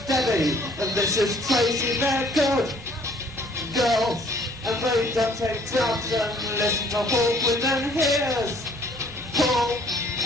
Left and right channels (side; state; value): both; normal; correlation 0.59